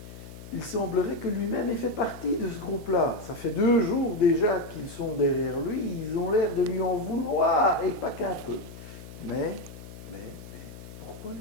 il semblerait que lui-même ait fait partie de ce groupe-là. Ça fait 2 jours déjà qu'ils sont derrière lui, ils ont l'air de lui en vouloir, et pas qu'un peu. Mais, pourquoi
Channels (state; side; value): noise; left; hum, 14 dB below the sound